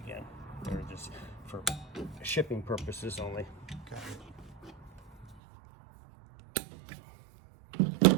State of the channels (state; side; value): drops out; left; at 5.4 s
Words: They're just for shipping purposes only.